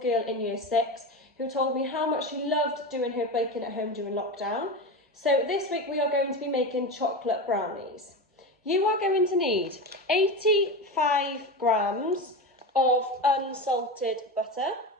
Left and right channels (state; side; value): normal; both; correlation 0.22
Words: in year 6 who told me how much she loved doing her baking at home during lockdown. So this week we are going to be making chocolate brownies. You are going to need 85 grams of unsalted butter,